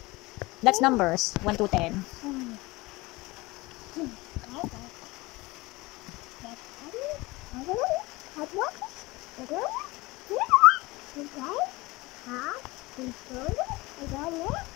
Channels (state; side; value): quieter; right; 22.1 dB